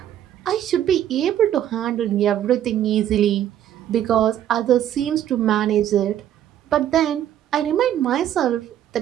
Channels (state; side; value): quieter; left; 11.1 dB